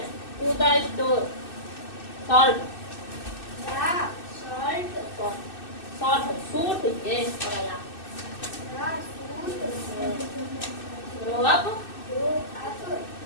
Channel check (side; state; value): right; late; 2.6 ms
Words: to the store? Salt. Salt. Suit. Yes. Grow up.